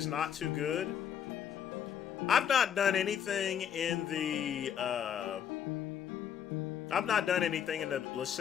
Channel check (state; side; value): quieter; right; 8.8 dB